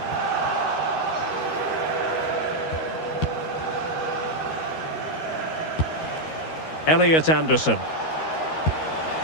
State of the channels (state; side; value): late; right; 13 ms